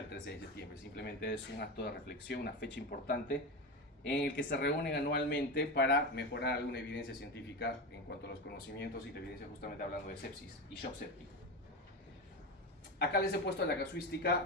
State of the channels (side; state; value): both; normal; correlation 0.19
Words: el 13 de septiembre. Simplemente es un acto de reflexión, una fecha importante en el que se reúnen anualmente para mejorar alguna evidencia científica en cuanto a los conocimientos y la evidencia, justamente hablando de sepsis y shock séptico. Acá les he puesto la